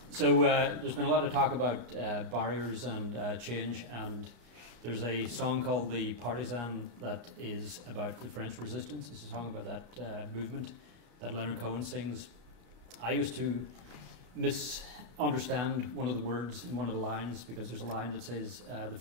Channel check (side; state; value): left; late; 34 ms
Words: So there's been a lot of talk about barriers and change, and there's a song called The Partisan that is about the French resistance. It's a song about that movement that Leonard Cohen sings. I used to misunderstand one of the words in one of the lines, because there's a line that says, the